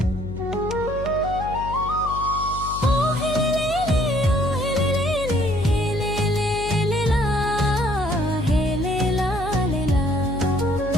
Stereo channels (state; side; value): noise; left; hum, 10 dB below the sound